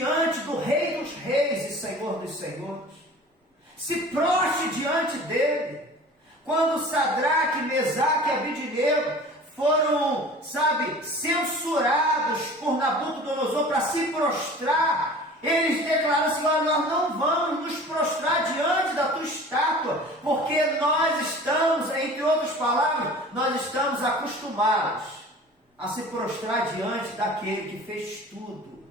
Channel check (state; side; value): normal; both; correlation 0.42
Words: do Rei dos Reis e Senhor dos Senhores, se prostre diante dele. Quando Sadraque, Mesaque e Abednego foram, censurados por Nabucodonosor para se prostrar, eles declararam assim: nós não vamos nos prostrar diante da tua estátua, porque nós estamos, entre outras palavras, nós estamos acostumados a se prostrar diante daquele que fez tudo,